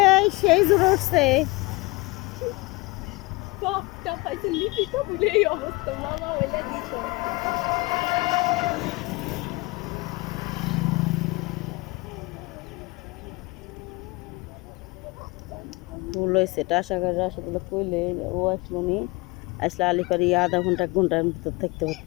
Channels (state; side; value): quieter; right; 24.1 dB